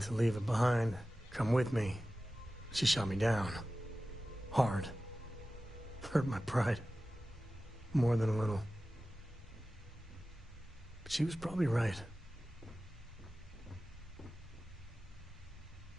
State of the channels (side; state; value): both; normal; correlation 0.96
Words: leave it behind, come with me. She shot me down. Hard. Hurt my pride. More than a little. But she was probably right.